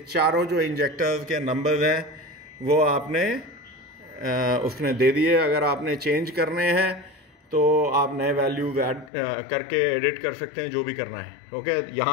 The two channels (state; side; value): drops out; right; at 9.1 s